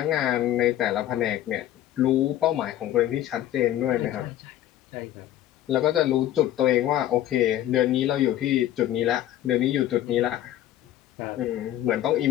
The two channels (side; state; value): right; quieter; 12.8 dB